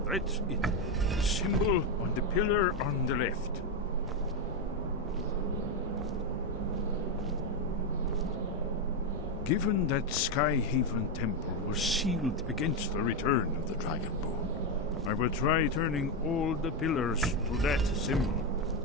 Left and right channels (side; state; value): both; normal; correlation 0.07